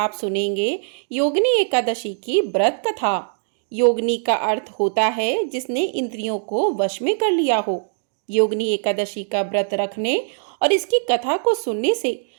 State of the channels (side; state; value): left; silent; digital silence